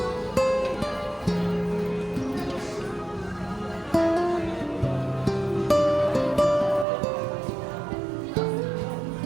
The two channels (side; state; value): left; drops out; at 6.9 s